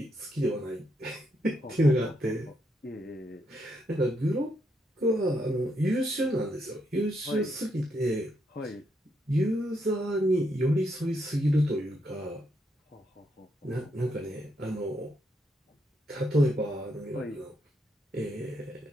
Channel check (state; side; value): normal; both; correlation 0.78